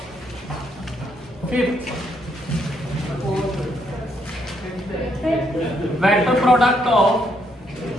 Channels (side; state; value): both; normal; correlation 0.74